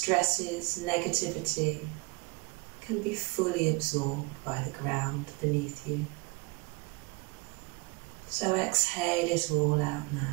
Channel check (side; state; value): left; quieter; 28.2 dB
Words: negativity can be fully absorbed by the ground beneath you. So exhale it all out